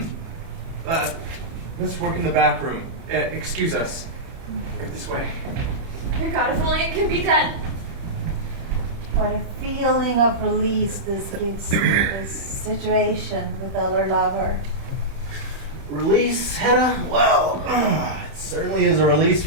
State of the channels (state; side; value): late; left; 30 ms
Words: Let's work in the back room. Excuse us. Right this way. Dear God, if only it can be done. What a feeling of release this gives me, this situation with Eller Lover. Release, Hedda? Well, it certainly is a release